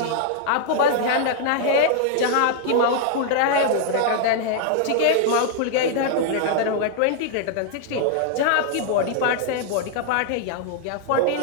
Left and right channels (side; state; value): both; different; correlation -0.01